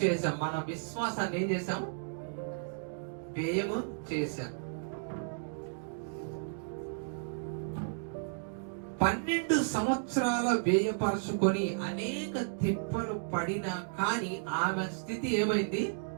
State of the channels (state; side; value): silent; left; digital silence